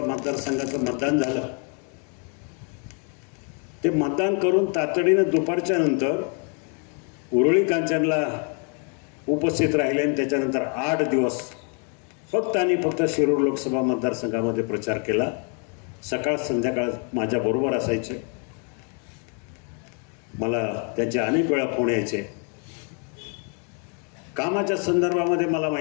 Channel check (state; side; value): quieter; right; 39.1 dB